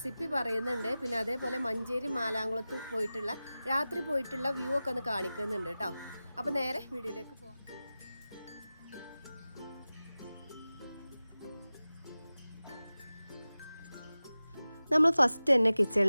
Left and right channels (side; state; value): both; inverted; correlation -0.96